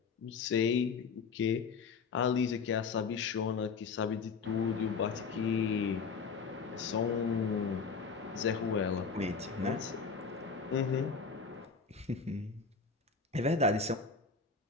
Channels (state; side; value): quieter; right; 5.1 dB